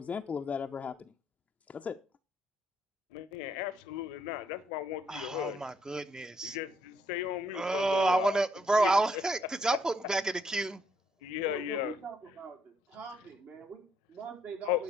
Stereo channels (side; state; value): both; normal; correlation 0.72